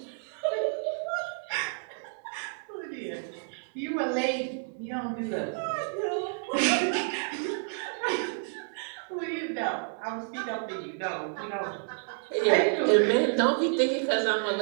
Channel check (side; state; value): left; silent; digital silence